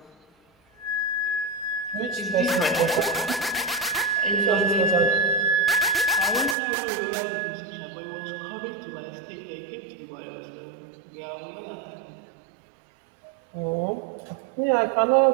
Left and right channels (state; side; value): drops out; left; at 6.6 s